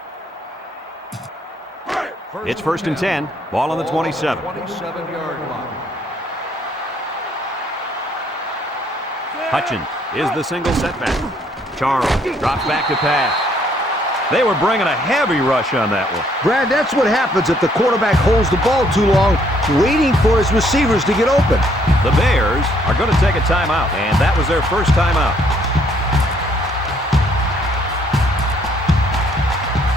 It's 1st and 10. Ball on the 27. 27-yard line. Hutchins is the single setback. Charles drops back to pass. They were bringing a heavy rush on that one. Brad, that's what happens if the quarterback holds the ball too long, waiting for his receivers to get open. The Bears are going to take a timeout, and that was their first timeout.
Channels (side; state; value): both; normal; correlation 0.66